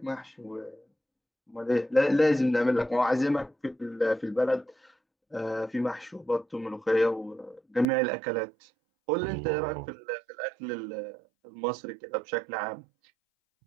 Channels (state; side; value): drops out; left; at 7.9 s